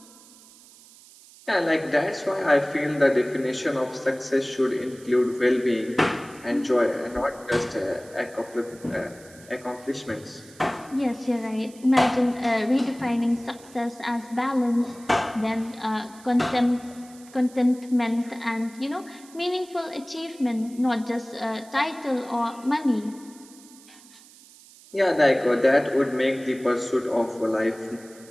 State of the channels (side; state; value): right; noise; hiss, 23 dB below the sound